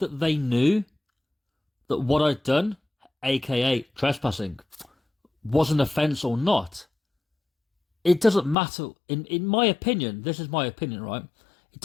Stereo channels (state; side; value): drops out; right; at 8.6 s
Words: they knew that what I'd done, aka trespassing, was an offence or not, it doesn't matter. In my opinion, this is my opinion, right? It